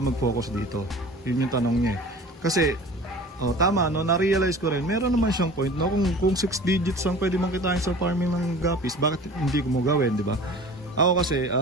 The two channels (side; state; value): both; normal; correlation 0.41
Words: mag-focus dito? Yun yung tanong niya. Kasi tama no, na-realize ko rin, meron naman siyang point no, kung 6 digits ang pwede mong kitain sa farming ng gapis, bakit hindi ko mo gawin, di ba? Ako kasi